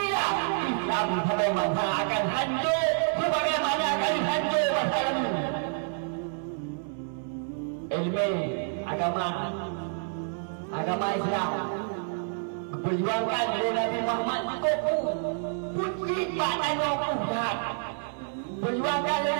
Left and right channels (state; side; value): silent; left; 59 dB below the other